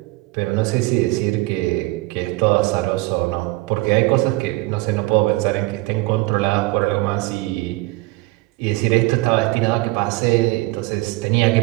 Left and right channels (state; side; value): quieter; left; 21.6 dB